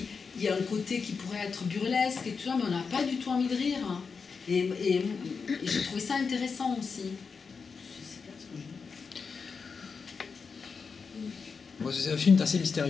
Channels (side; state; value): right; quieter; 5.3 dB